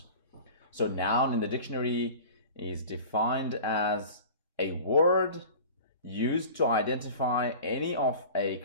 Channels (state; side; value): inverted; both; correlation -0.39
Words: So noun in the dictionary is defined as a word used to identify any of a